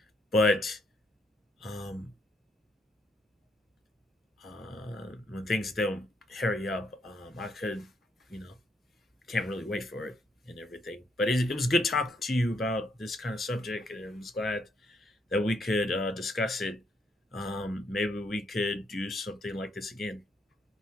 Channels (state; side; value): normal; both; correlation 0.74